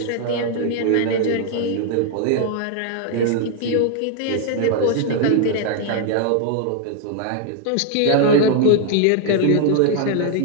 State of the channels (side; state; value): both; different; correlation 0.00